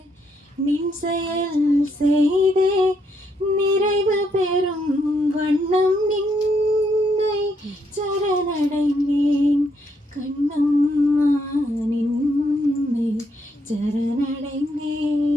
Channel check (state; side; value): normal; both; correlation 0.75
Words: நின் செயல் செய்தே நிறைவு பெறும் வண்ணம் நின்னை சரணடைந்தேன் கண்ணம்மா நின்னை சரணடைந்தேன்.